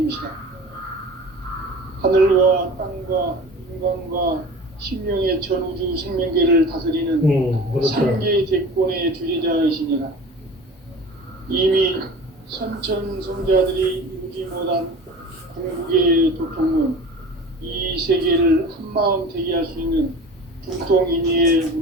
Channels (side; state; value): both; normal; correlation 0.38